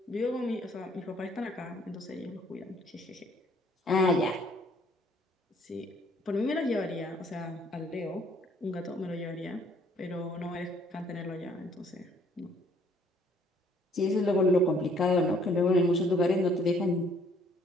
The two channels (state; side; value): normal; both; correlation 0.62